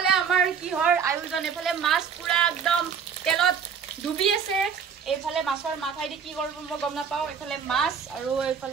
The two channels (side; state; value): left; quieter; 6.8 dB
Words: আমাৰ কিহৰ আয়োজন এফালে মাছ পুৰা একদম তেলত ডুবি আছে এফালে মাছৰ মাথাই দি কি কৰিব মই গম নাপাও এফালে মাছ আৰু